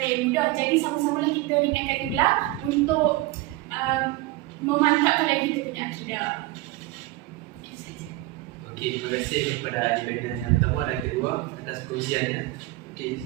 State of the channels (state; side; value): quieter; left; 17.9 dB